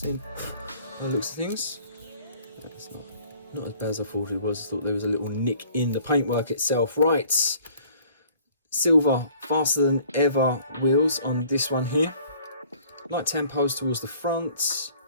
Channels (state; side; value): inverted; both; correlation -0.55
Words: by the looks of things. That's not as bad as I thought it was. I thought there was a little nick in the paintwork itself. Right, silver faster than ever wheels on this one here. Light tampos towards the front.